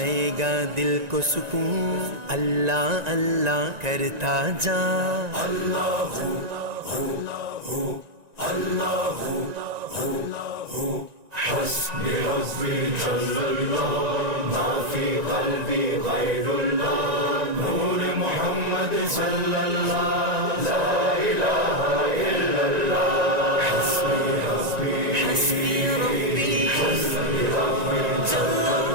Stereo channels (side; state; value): left; late; 1.9 ms